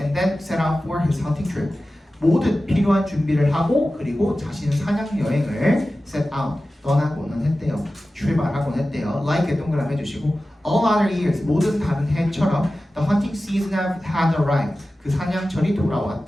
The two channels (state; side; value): normal; both; correlation 0.95